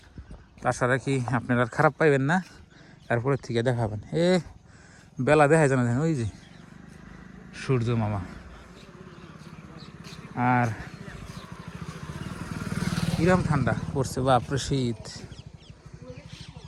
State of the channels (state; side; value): identical; both; correlation 1.00